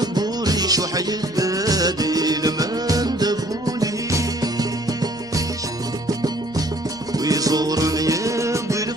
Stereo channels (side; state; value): both; normal; correlation 0.58